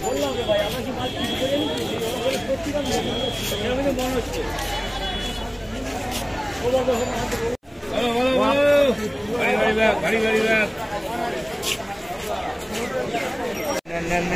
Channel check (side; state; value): both; identical; correlation 1.00